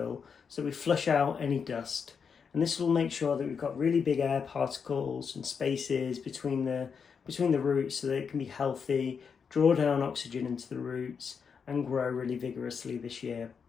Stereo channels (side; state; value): right; quieter; 6.3 dB